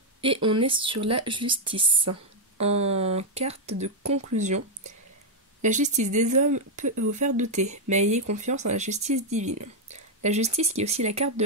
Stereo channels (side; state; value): both; normal; correlation 0.00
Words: Et on est sur la justice. En carte de conclusion, la justice des hommes peut vous faire douter, mais ayez confiance en la justice divine. La justice qui est aussi la carte de